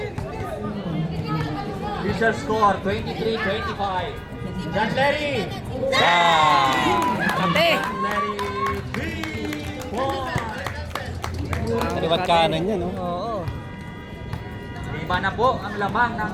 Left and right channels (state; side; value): identical; both; correlation 1.00